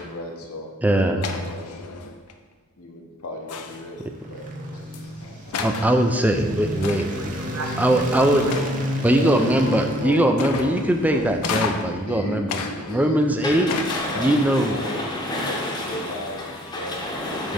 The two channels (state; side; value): normal; both; correlation 0.66